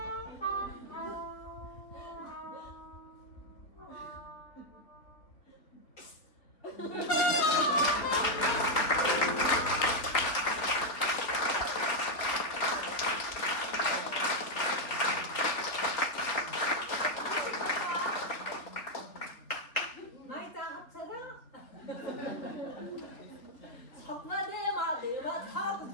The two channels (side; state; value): right; late; 3.7 ms